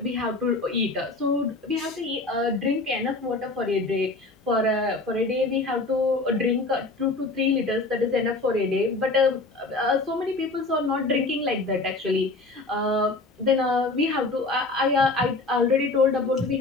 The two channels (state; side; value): quieter; right; 3.3 dB